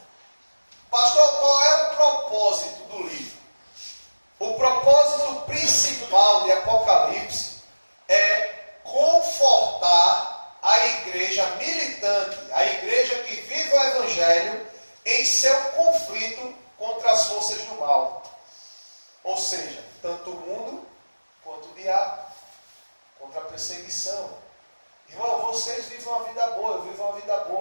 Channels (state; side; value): inverted; both; correlation -1.00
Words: Pastor, qual militante, a igreja que vive o Evangelho em seu conflito contra as forças do mal. Ou seja, tanto o mundo quanto o diabo, contra a perseguição. Irmão, vocês vivem uma vida boa, eu vivo uma vida